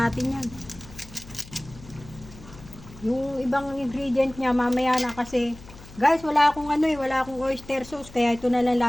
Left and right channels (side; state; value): left; noise; hum, 19 dB below the sound